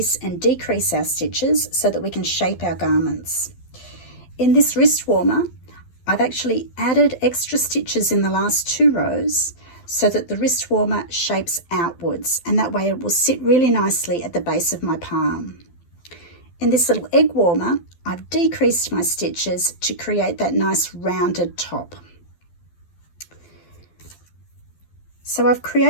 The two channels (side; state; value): right; late; 12 ms